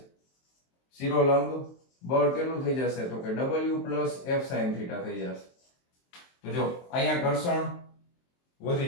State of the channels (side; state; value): right; late; 23 ms